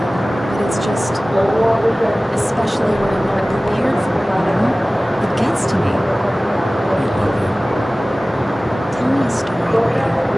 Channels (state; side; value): normal; both; correlation 0.98